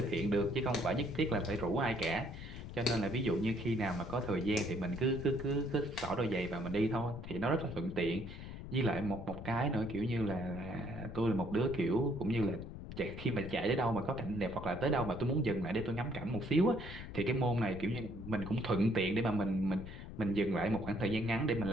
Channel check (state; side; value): noise; left; rumble, 10 dB below the sound